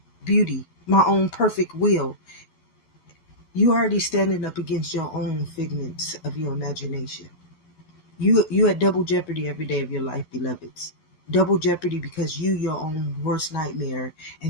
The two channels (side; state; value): right; late; 11 ms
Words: beauty, my own perfect will. You already standing up against your own figments of your imagination. You at double jeopardy every day of your life, beloveds. Double jeopardy because you your own worst nightmare,